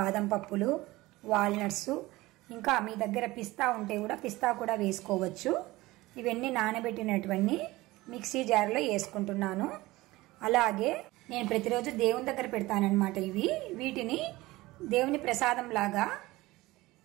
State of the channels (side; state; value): left; quieter; 19.4 dB